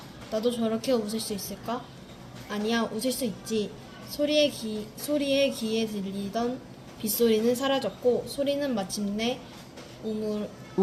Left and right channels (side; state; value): both; identical; correlation 1.00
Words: 나도 저렇게 웃을 수 있을까? 아니야, 웃을 수 있지. 소리의 귀에 들리던 빗소리는 사라졌고 소리는 마침내